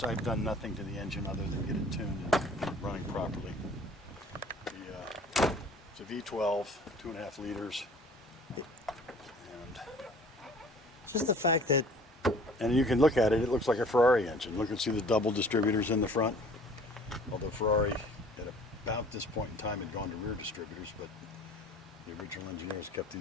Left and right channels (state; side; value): normal; both; correlation 0.50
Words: I've done nothing to the engine other than get it tuned and running properly. It's a V12, 2.5 liters, and Just the fact that you can look at it. It looks like a Ferrari engine. Look and see the double distributors in the front. Although Ferrari at about this point in time had gone to rear distributors, but the original engineers kept